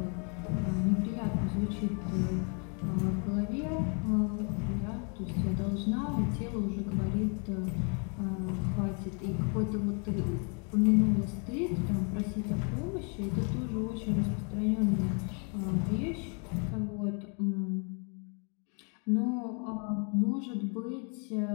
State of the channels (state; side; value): quieter; right; 38.4 dB